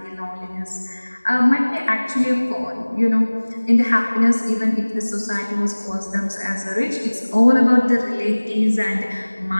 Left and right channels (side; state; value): both; inverted; correlation -1.00